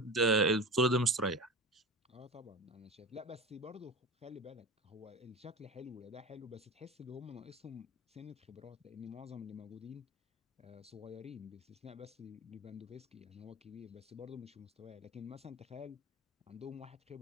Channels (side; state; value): both; normal; correlation 0.30